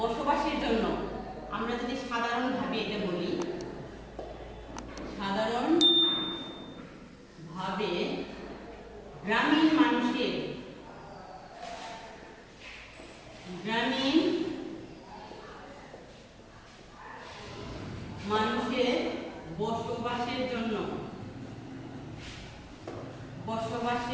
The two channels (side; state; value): both; identical; correlation 1.00